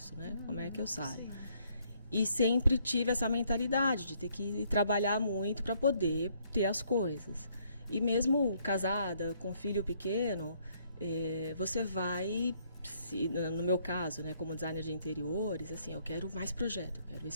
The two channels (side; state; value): both; inverted; correlation -0.68